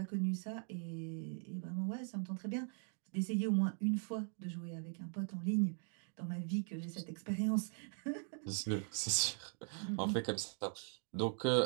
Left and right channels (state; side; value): silent; left; 51 dB below the other